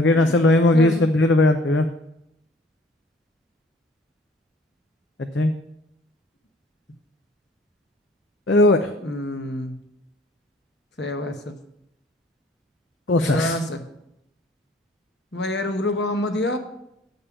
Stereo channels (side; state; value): both; normal; correlation 0.55